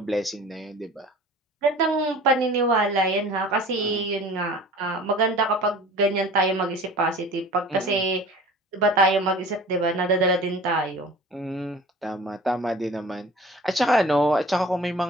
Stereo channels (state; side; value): normal; both; correlation 0.43